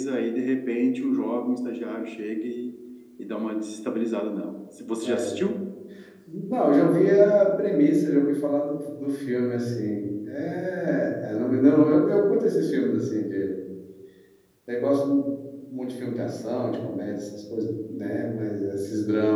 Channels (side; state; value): both; identical; correlation 1.00